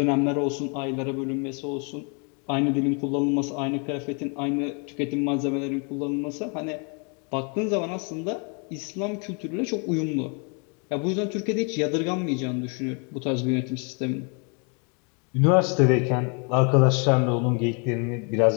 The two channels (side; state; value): right; quieter; 36.3 dB